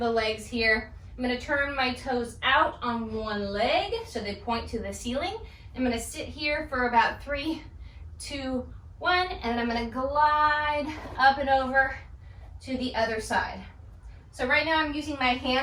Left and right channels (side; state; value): both; identical; correlation 1.00